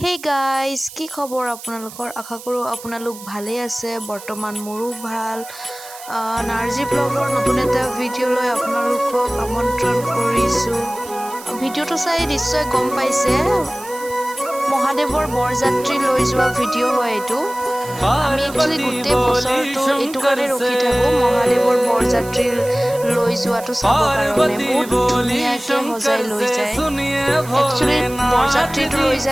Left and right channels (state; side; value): noise; right; hiss, 16 dB below the sound